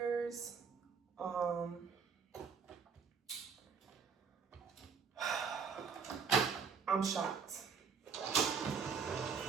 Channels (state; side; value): quieter; left; 5.9 dB